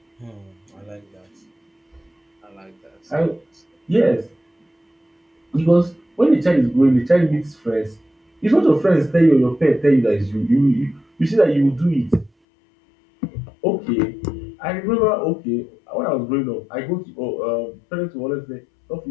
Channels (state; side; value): drops out; right; at 12.3 s